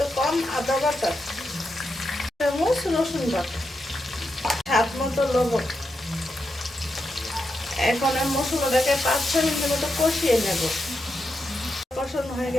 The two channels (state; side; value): normal; both; correlation 0.85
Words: কম আদা বাটা, চামচ রসুন বাটা, স্বাদ মতো লবণ। এখন আমি মশলাটাকে 5-6 মিনিটের মতো কষিয়ে নেব। কষানো হয়ে